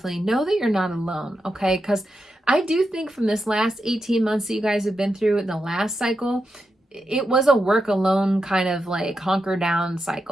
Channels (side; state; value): both; normal; correlation 0.87